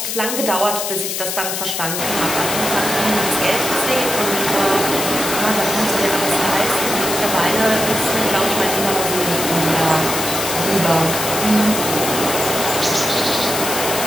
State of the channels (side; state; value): left; noise; hiss, 3 dB below the sound